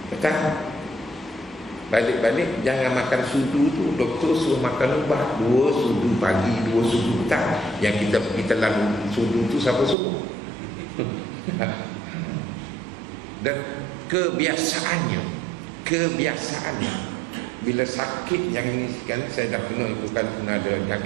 petang. Balik-balik jangan makan sudu tu. Doktor suruh makan ubat 2 sudu pagi, 2 sudu petang. Yang kita pergi telan sudu tu siapa suruh? Dan kebiasaannya bila sakit yang ini kan, saya dah kena itu kan, pernah ada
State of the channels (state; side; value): drops out; left; at 10.0 s